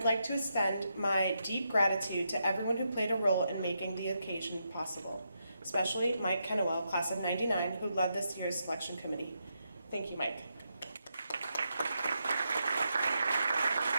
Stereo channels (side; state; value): both; inverted; correlation -0.83